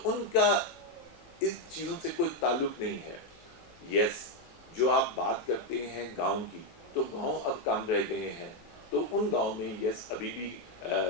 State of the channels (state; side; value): late; right; 18 ms